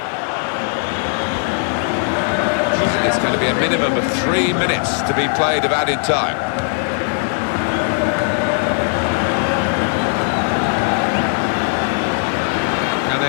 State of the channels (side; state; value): right; silent; 57 dB below the other